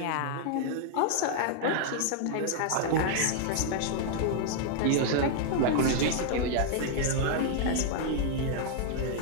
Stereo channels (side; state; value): both; different; correlation 0.00